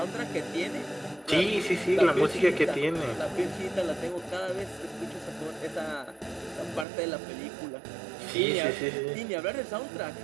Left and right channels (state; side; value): drops out; left; at 6.9 s